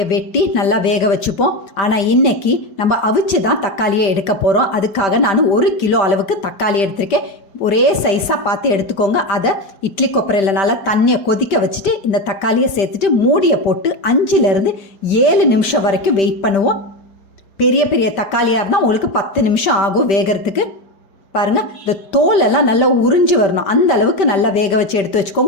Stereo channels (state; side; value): late; right; 5.1 ms